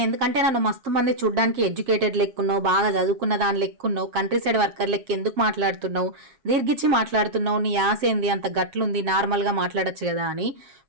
ఎందుకంటే నన్ను మస్తు మంది చూడ్డానికి ఎడ్యుకేటెడ్ లెక్కున్నావు, బాగా చదువుకున్న దాని లెక్కున్నావు, కంట్రీ సైడ్ వర్కర్ లెక్క ఎందుకు మాట్లాడుతున్నావు, దీర్ఘిచ్చి మాట్లాడుతున్నావు, నీ ఆశ ఏంది, అంత గట్లుంది, నార్మల్గా మాట్లాడచ్చు కదా అని.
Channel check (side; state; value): left; late; 7.5 ms